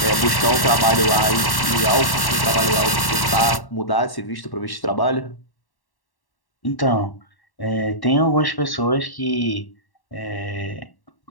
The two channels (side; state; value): right; late; 1.1 ms